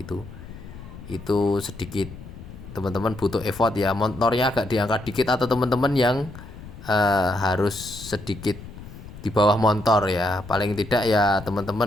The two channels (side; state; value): left; noise; rumble, 15 dB below the sound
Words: sedikit teman-teman butuh effort ya, motornya agak diangkat dikit, atau teman-teman yang harus sedikit di bawah motor ya, paling tidak ya